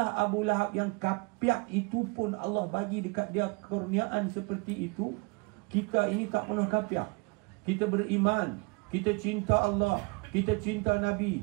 Abu Lahab yang kapiak itu pun Allah bagi dekat dia kurniaan seperti itu, kita ini tak pernah kapiak. Kita beriman, kita cinta Allah, kita cinta Nabi,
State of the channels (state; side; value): quieter; left; 28.7 dB